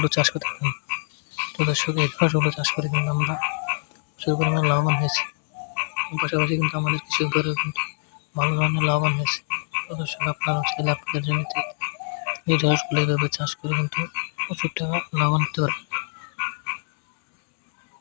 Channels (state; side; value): silent; right; digital silence